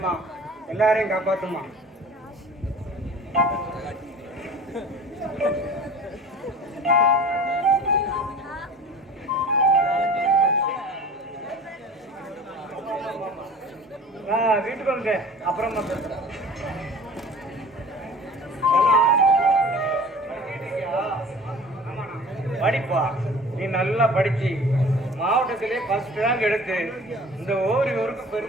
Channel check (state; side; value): normal; both; correlation 0.42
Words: எல்லாரையும் காப்பாத்துமா. வீட்டுக்கு வந்து அப்புறமா பேசுறேன். படிப்பா, நீ நல்லா படிச்சு மாவட்டத்திலே ஃபர்ஸ்ட் ரேங்க் எடுத்து இந்த ஊருக்கு